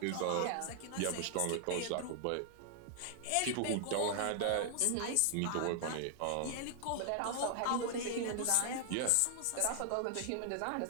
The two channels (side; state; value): both; different; correlation 0.00